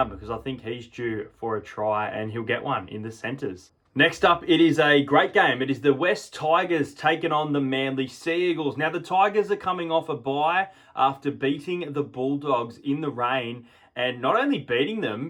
because I think he's due for a try and he'll get one in the centres. Next up, it is a great game. It is the West Tigers taking on the Manly Sea Eagles. Now, the Tigers are coming off a bye after beating the Bulldogs in the rain. And not only beating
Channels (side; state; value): both; identical; correlation 1.00